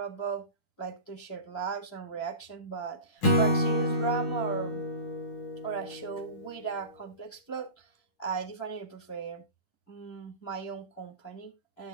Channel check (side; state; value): right; late; 10 ms